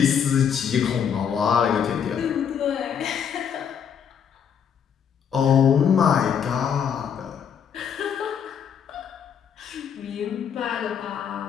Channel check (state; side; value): quieter; right; 7.8 dB